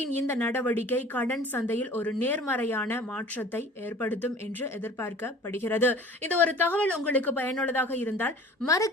இந்த நடவடிக்கை கடன் சந்தையில் ஒரு நேர்மறையான மாற்றத்தை ஏற்படுத்தும் என்று எதிர்பார்க்கப்படுகிறது. இந்த ஒரு தகவல் உங்களுக்கு பயனுள்ளதாக இருந்தால்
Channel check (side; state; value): both; normal; correlation 0.45